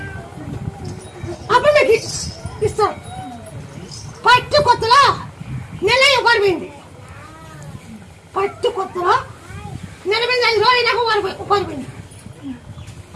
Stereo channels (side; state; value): both; identical; correlation 1.00